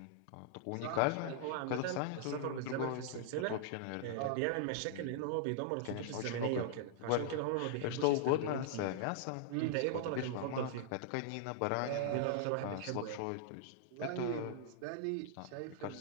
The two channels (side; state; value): both; different; correlation -0.01